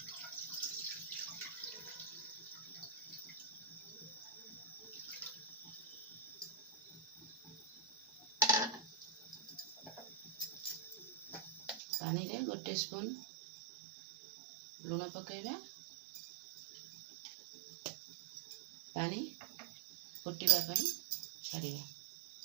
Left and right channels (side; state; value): left; drops out; at 11.8 s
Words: पानी रे 1 स्पून लुण पकेबा। पानी फुटिबा पई छाड़िबा।